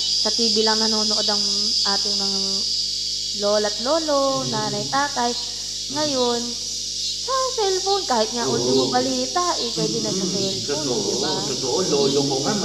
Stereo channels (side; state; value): left; noise; hum, 19 dB below the sound